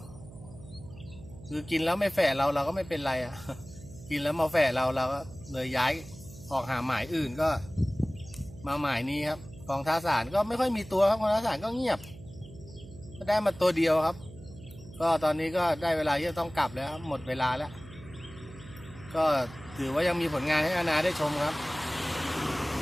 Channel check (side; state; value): right; noise; hum, 17 dB below the sound